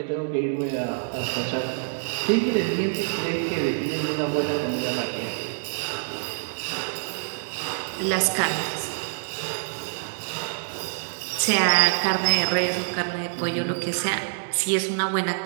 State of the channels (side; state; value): left; silent; digital silence